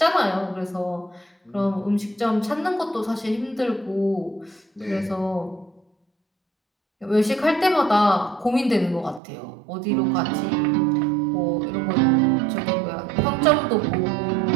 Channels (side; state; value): left; drops out; at 9.2 s